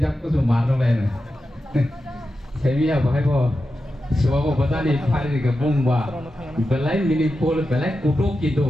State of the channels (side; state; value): both; normal; correlation 0.90